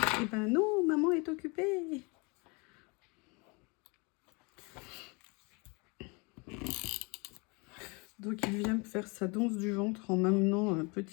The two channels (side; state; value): right; quieter; 29.6 dB